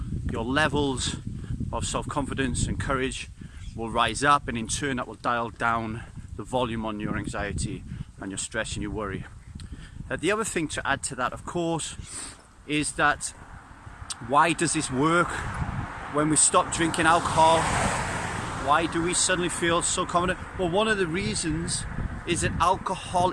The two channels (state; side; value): identical; both; correlation 1.00